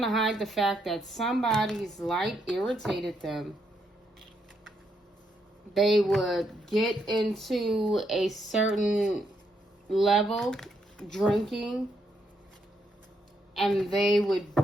to hide the fact that somebody's light irritated them. They would get into a certain level, drinking, and they would,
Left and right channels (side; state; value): both; normal; correlation 0.77